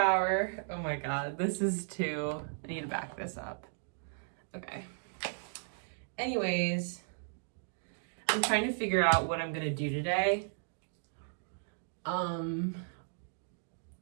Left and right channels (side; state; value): left; silent; digital silence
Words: Oh my god, this is too... I need to back this up. Okay. Anyways, I'm trying to figure out what I'm gonna do today. I'm